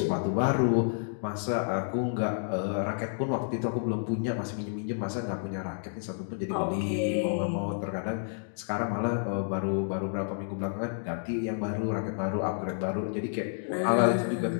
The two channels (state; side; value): silent; right; digital silence